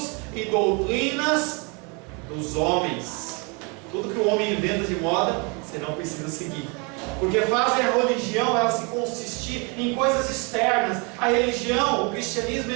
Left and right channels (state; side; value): quieter; left; 31.5 dB